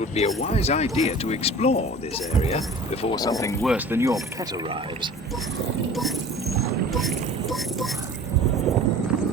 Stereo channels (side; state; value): both; normal; correlation 0.42